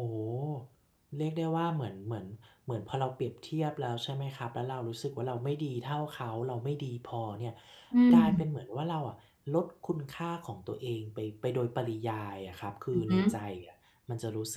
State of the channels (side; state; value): both; identical; correlation 1.00